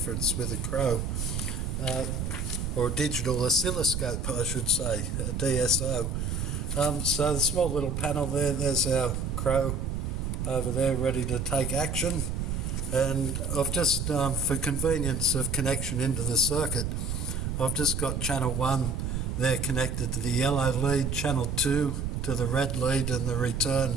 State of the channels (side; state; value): right; noise; rumble, 2 dB below the sound